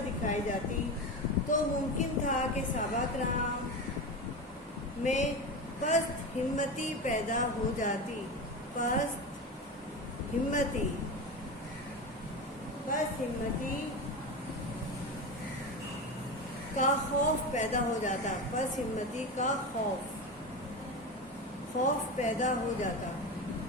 جاتی تو ممکن تھا کہ صحابہ کرام میں پست ہمتی پیدا ہو جاتی پست ہمتی کا خوف پیدا ہو جاتا پست ہمتی کا خوف پیدا ہو جاتا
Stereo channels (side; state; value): both; normal; correlation 0.22